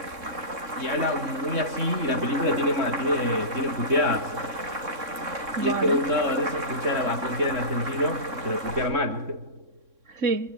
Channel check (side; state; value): left; late; 3.6 ms